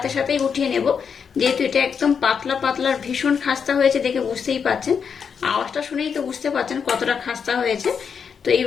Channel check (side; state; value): right; quieter; 6.6 dB